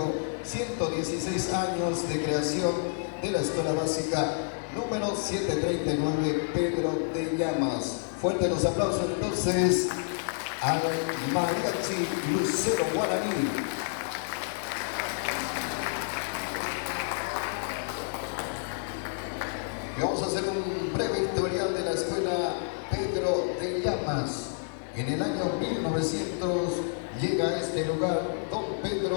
116 años de creación de la Escuela Básica número 739 Pedro de Llamas. Fuertes los aplausos entonces al Mariachi Lucero Guaraní. Y vamos a hacer un breve historial de la Escuela Pedro de Llamas. En el año 1900 llega a este lugar don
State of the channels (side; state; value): right; silent; 58 dB below the other